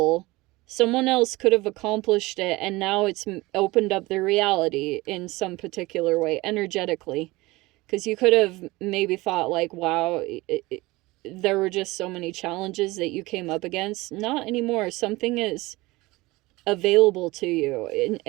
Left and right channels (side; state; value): left; quieter; 21.1 dB